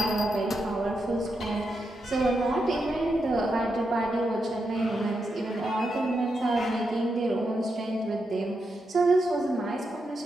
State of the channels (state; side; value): normal; both; correlation 0.85